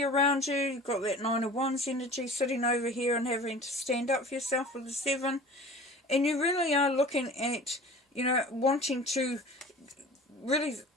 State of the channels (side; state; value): both; normal; correlation 0.41